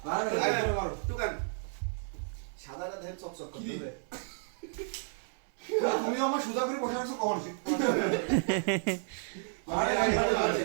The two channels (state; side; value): silent; left; 56 dB below the other